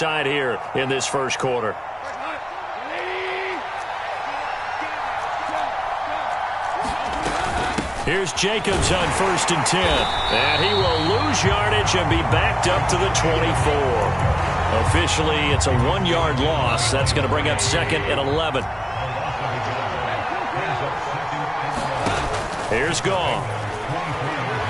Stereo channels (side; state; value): both; identical; correlation 1.00